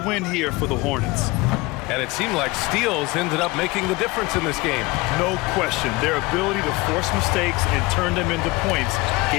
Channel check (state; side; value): quieter; right; 22.6 dB